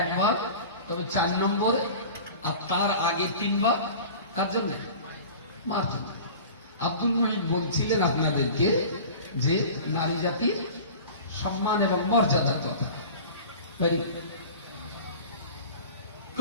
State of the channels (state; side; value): inverted; both; correlation -0.38